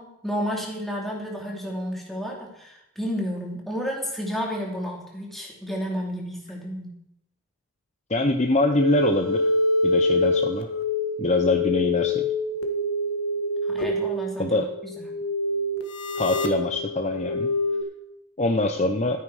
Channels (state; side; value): normal; both; correlation -0.03